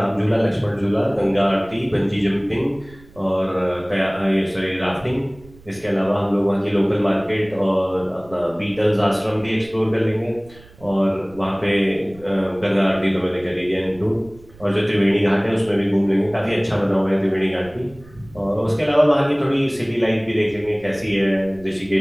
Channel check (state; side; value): noise; right; rumble, 23 dB below the sound